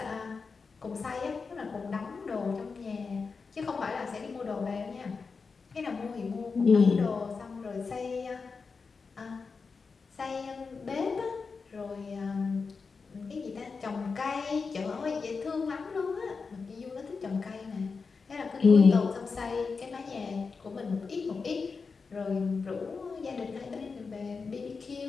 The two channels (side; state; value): right; quieter; 4.8 dB